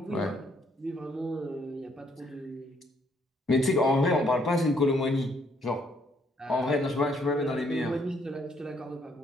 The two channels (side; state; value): both; normal; correlation 0.69